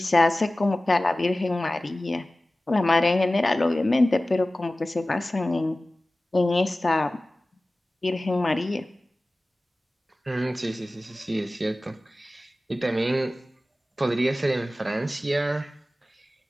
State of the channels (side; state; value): both; normal; correlation 0.97